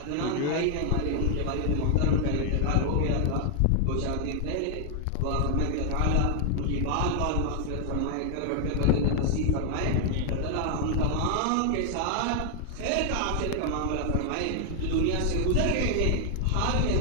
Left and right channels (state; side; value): different; both; correlation 0.00